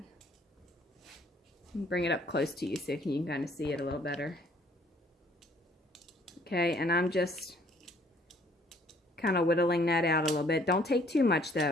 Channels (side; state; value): both; normal; correlation 0.61